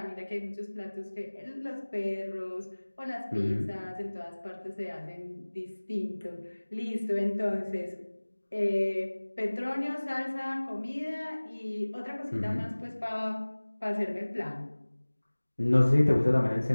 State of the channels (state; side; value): inverted; both; correlation -1.00